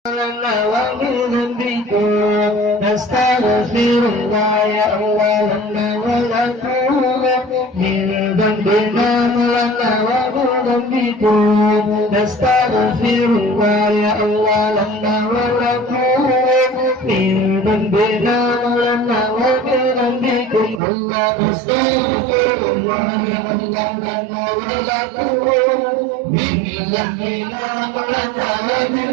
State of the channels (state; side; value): drops out; left; at 20.8 s